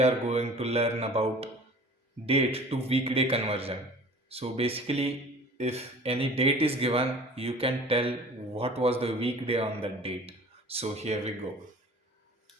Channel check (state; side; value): normal; both; correlation 0.45